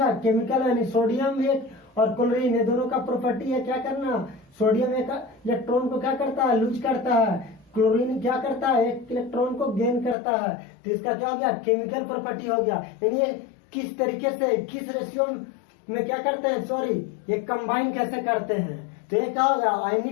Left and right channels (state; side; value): drops out; right; at 10.2 s